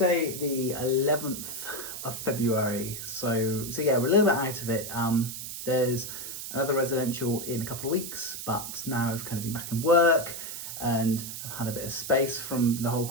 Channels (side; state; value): right; noise; hiss, 8 dB below the sound